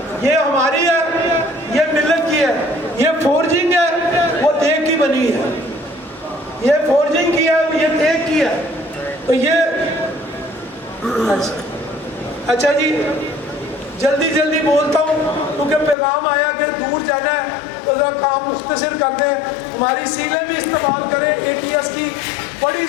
ये हमारी है, ये मिल्लत की है। ये फोर्जिंग है, वो देख की बनी है। ये फोर्जिंग की है, ये देख की है। तो ये अच्छा जी, जल्दी बोलता हूँ क्योंकि पैगाम आया कि दूर जाना है, तो जरा काम मुख्तसर कर दें। हमारी सीलें भी इस्तेमाल करें, ATS की बड़ी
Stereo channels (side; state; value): right; drops out; at 16.0 s